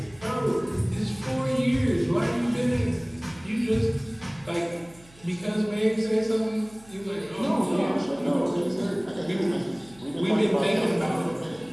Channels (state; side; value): noise; right; hum, 25 dB below the sound